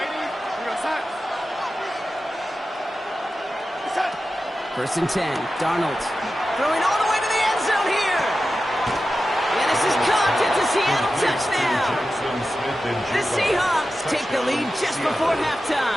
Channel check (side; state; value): both; normal; correlation 0.92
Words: First and 10, Darnold throwing all the way to the end zone here. And this is caught. It's a Seattle touchdown. The Seahawks take the lead just before